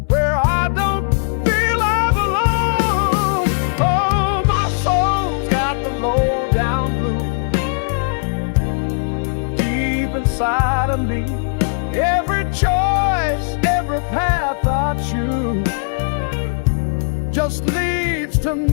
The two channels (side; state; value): right; silent; digital silence